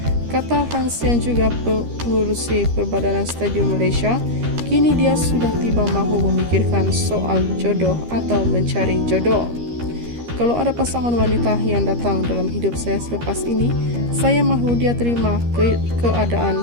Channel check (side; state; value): left; late; 13 ms